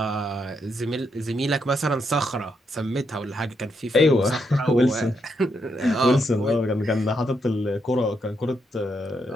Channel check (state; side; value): normal; both; correlation 0.80